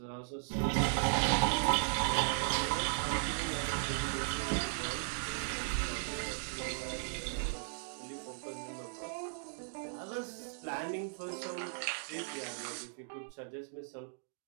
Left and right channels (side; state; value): left; silent; digital silence